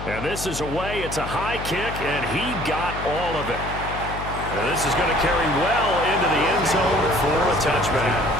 And this is away. It's a high kick, and he got all of it. And this is going to carry well into the end zone for a touchback.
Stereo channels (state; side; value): noise; left; hum, 8 dB below the sound